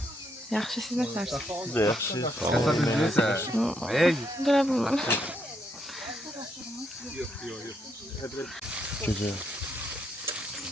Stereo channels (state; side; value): normal; both; correlation 0.76